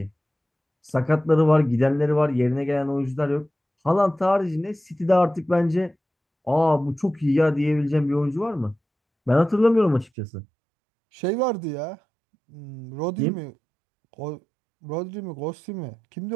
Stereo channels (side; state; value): left; drops out; at 10.1 s